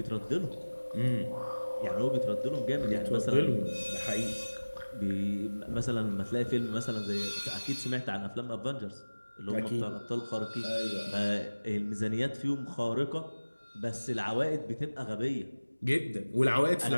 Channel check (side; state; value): both; inverted; correlation -1.00